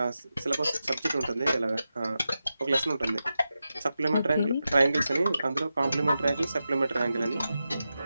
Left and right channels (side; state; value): both; inverted; correlation -0.91